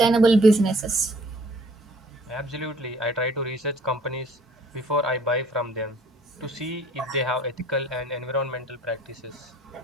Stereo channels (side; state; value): both; normal; correlation 0.56